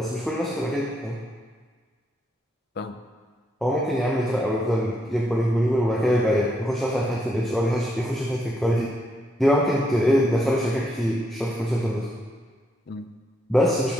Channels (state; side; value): normal; both; correlation 0.77